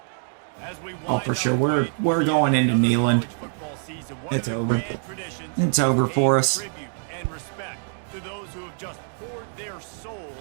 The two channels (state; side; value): silent; left; 62 dB below the other